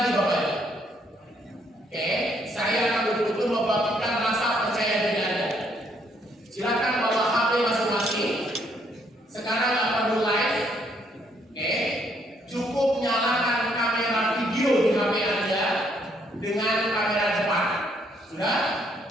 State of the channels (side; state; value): both; normal; correlation 0.70